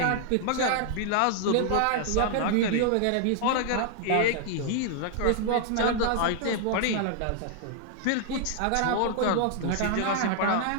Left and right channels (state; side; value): different; both; correlation 0.00